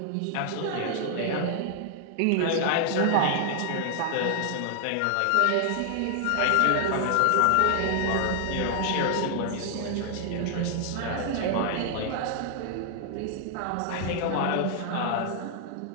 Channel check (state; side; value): different; both; correlation 0.00